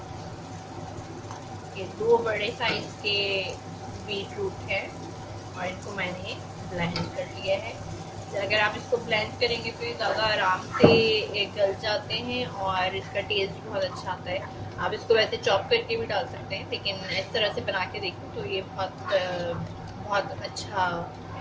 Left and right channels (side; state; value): both; identical; correlation 1.00